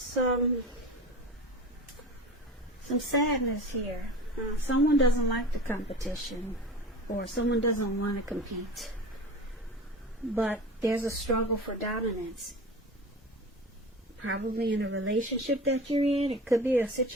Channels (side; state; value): both; normal; correlation 0.34